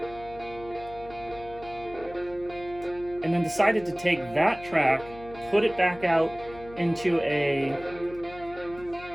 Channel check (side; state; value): left; noise; hum, 18 dB below the sound